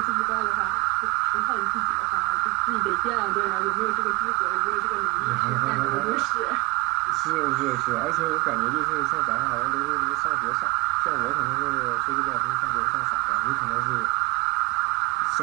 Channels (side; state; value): left; quieter; 25.3 dB